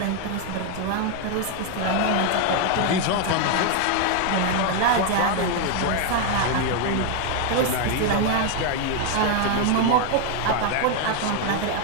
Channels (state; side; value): different; both; correlation 0.01